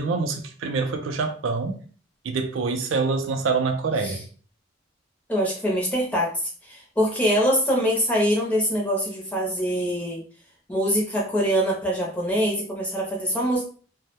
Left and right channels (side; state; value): both; normal; correlation 0.38